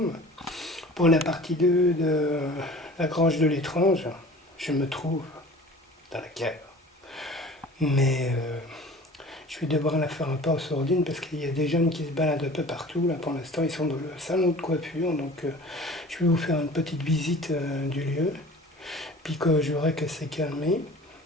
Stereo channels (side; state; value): both; normal; correlation 0.44